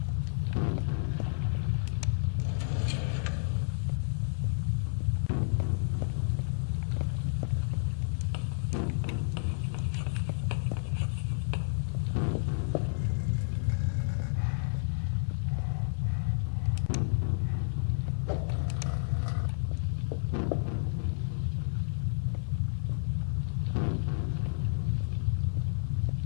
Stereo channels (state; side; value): silent; right; digital silence